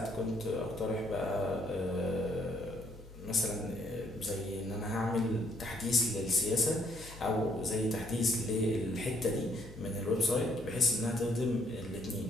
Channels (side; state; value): both; normal; correlation 0.68